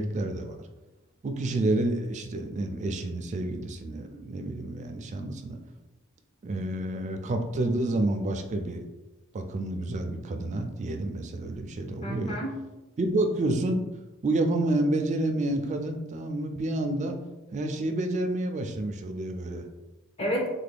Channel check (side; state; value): both; normal; correlation 0.68